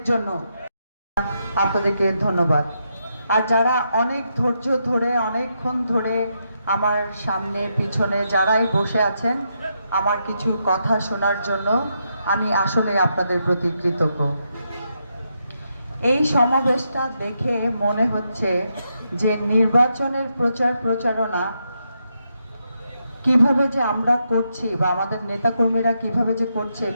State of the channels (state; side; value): inverted; both; correlation -0.82